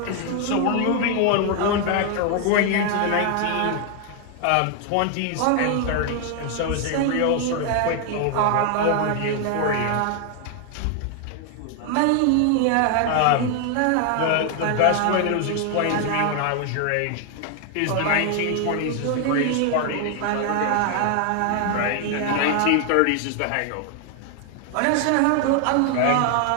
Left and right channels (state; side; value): different; both; correlation 0.00